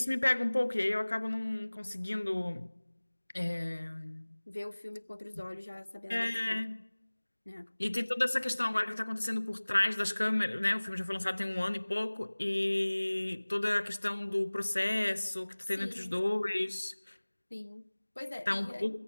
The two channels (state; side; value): inverted; both; correlation -1.00